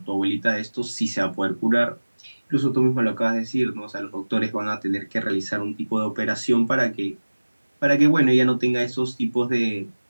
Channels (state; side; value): inverted; both; correlation -1.00